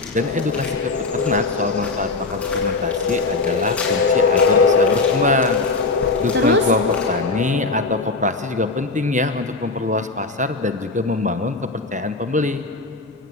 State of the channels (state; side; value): quieter; right; 3.7 dB